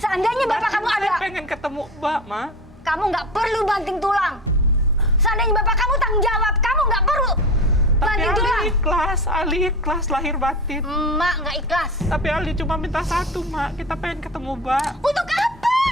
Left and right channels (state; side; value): normal; both; correlation 0.31